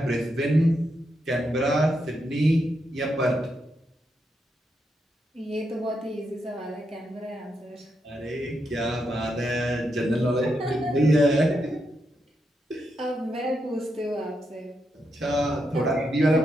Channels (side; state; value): both; normal; correlation 0.83